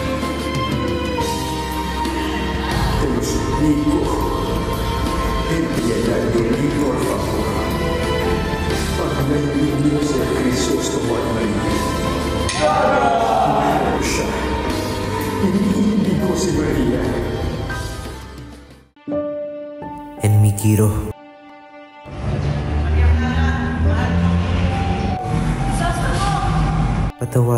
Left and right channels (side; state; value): both; identical; correlation 1.00